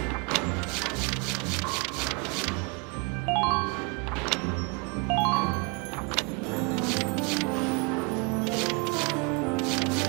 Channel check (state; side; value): quieter; left; 31.0 dB